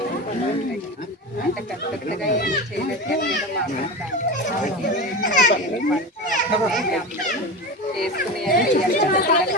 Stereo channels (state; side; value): normal; both; correlation 0.25